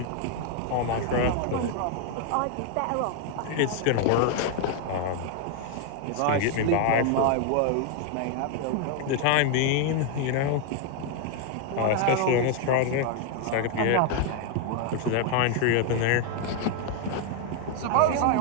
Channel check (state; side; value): different; both; correlation 0.01